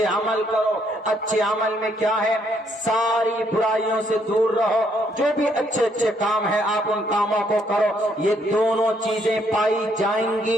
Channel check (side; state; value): both; normal; correlation 0.71